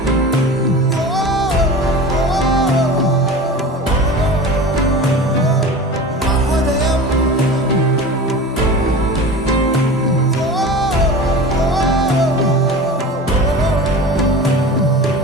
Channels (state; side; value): normal; both; correlation 0.34